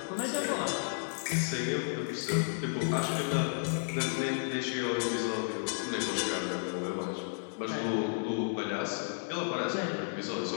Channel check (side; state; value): right; silent; 56 dB below the other